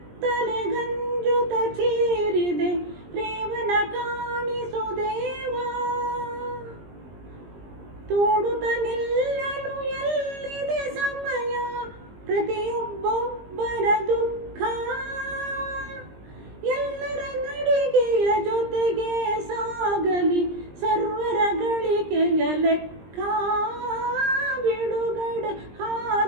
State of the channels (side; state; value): left; late; 20 ms